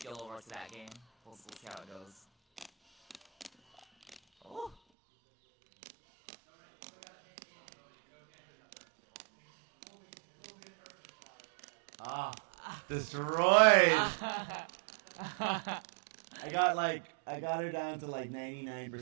over to that game. We'll see how it goes. Oh. Destroyed. I got her down to like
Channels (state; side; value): drops out; left; at 4.8 s